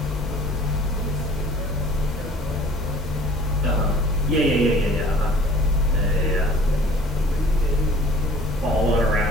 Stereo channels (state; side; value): normal; both; correlation 0.50